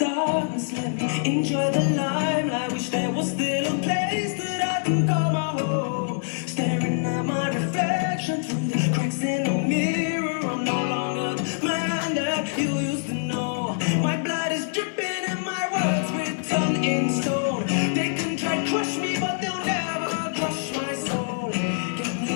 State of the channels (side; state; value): right; silent; 55 dB below the other